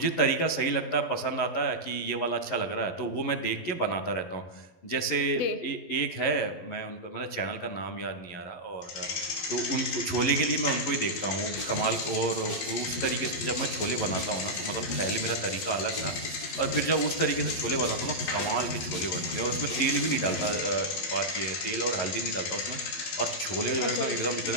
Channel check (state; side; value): late; right; 12 ms